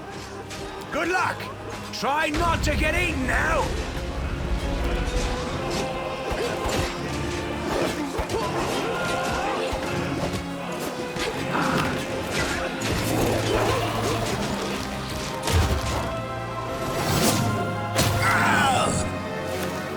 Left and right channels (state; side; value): identical; both; correlation 1.00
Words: Good luck! Try not to get eaten now!